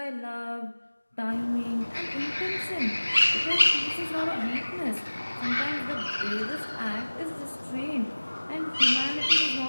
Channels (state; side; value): inverted; both; correlation -1.00